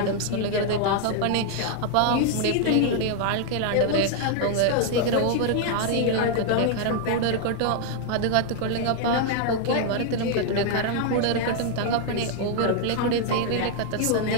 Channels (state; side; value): different; both; correlation 0.00